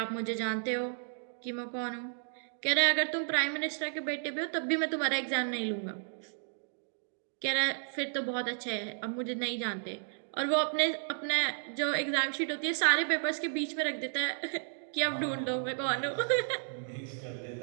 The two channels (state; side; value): silent; left; digital silence